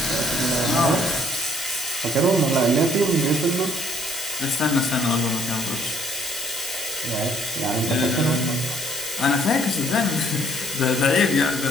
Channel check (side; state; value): both; normal; correlation 0.61